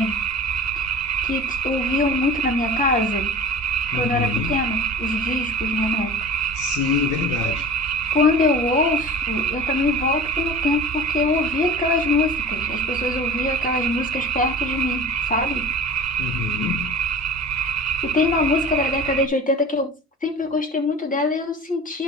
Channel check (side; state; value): both; normal; correlation 0.37